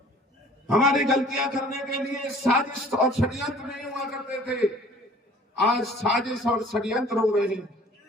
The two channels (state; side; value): normal; both; correlation 0.51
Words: हमारी गलतियां करने के लिए साजिश और षड्यंत्र नहीं हुआ करते थे। आज साजिश और षड्यंत्र हो रहे हैं।